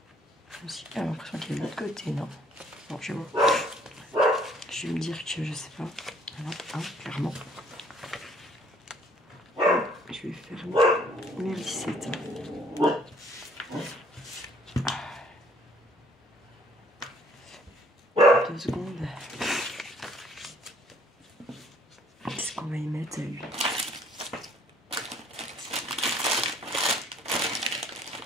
Aussi, j'ai l'impression qu'il y a de l'autre côté, non? Bon, je vois. Je vais me dire que je sais pas. Voilà, hein, clairement. Je vais faire mes lissettes. 2 secondes. Qu'est-ce qu'on va y mettre à lui?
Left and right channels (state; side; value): normal; both; correlation 0.61